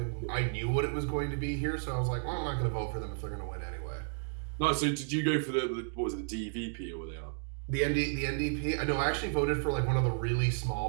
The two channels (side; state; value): left; silent; digital silence